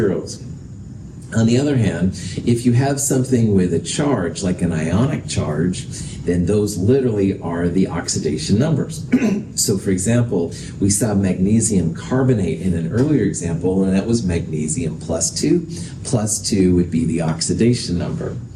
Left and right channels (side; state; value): both; identical; correlation 1.00